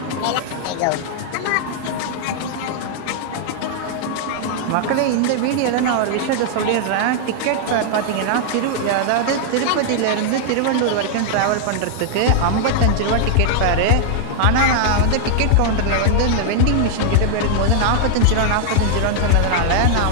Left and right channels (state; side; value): different; both; correlation -0.01